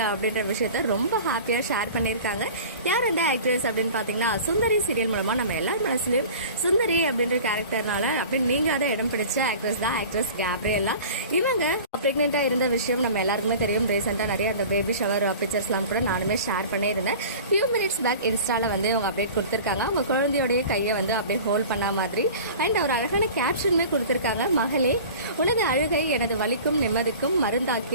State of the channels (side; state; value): both; inverted; correlation -0.40